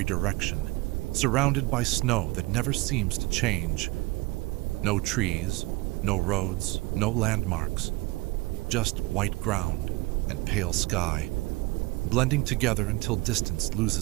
direction, surrounded by snow that never seems to change. No trees, no roads, no landmarks. Just white ground and pale sky, blending together until distance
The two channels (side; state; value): left; quieter; 21.9 dB